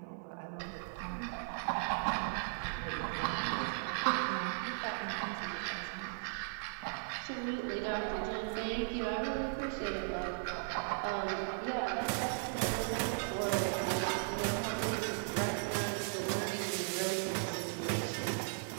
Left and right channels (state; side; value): silent; left; 53 dB below the other